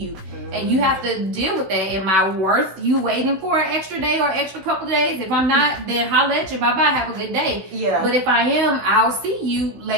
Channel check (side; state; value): left; late; 16 ms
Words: And you have to deal with that. Am I worth you waiting for an extra day or extra couple of days? If I'm not, then holla at you. Bye-bye. Have a good day. Yeah. But if I am, I'll see you